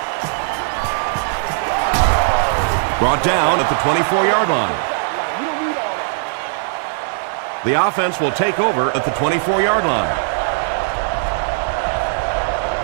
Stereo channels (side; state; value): left; silent; 67 dB below the other